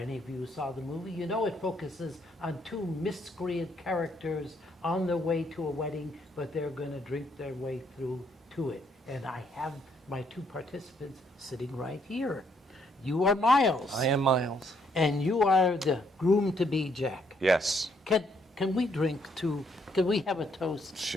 of you who saw the movie, you know it focuses on two miscreant characters on their way to a wedding, but they're going to drink their way through to it. And I have my two participants sitting right here. You are Miles. I am Miles. And you are the groom-to-be, Jack. Yes. Can we drink to, can we have a toast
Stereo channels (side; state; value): both; normal; correlation 0.71